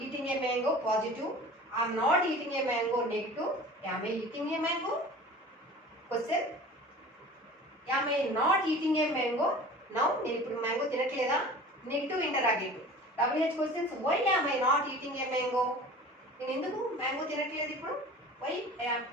eating a mango, positive. I am not eating a mango, negative. Am I eating a mango? Question, am I not eating a mango now? నేను ఇప్పుడు mango తినట్లేదా? Negative interrogative. WH questions, why am I not eating a mango? నేను ఎందుకు mango తినట్లేదు ఇప్పుడు? Why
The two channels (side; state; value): both; normal; correlation 0.41